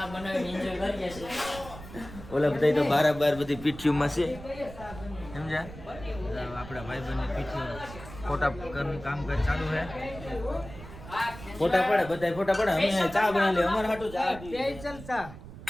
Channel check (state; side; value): noise; right; rumble, 14 dB below the sound